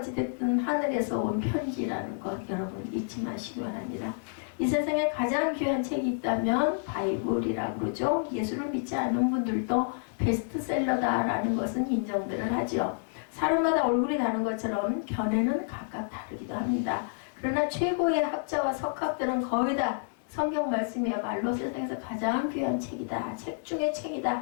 하늘에서 온 편지라는 것 여러분 잊지 마시기 바랍니다. 이 세상에 가장 귀한 책이 있다면 바이블이라고 그러죠. 예수를 믿지 않는 분들도 베스트셀러다라는 것은 인정들을 하죠. 사람마다 얼굴이 다른 것처럼 견해는 각각 다르기도 합니다. 그러나 최고의 학자와 석학들은 거의 다 성경 말씀이야말로 세상에서 가장 귀한 책이다. 책 중에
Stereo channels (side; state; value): right; silent; digital silence